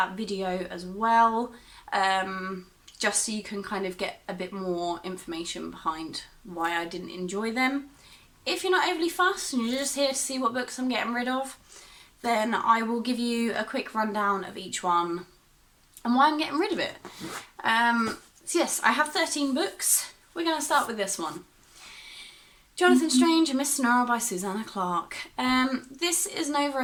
video as well, just so you can kind of get a bit more information behind why I didn't enjoy them. If you're not overly fussed and you're just here to see what books I'm getting rid of, then I will give you a quick rundown of each one and why I'm getting rid of it. So yes, I have 13 books. We're going to start with this one. Jonathan Strange and Miss Sonora by Susanna Clarke. This is an over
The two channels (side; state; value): both; identical; correlation 1.00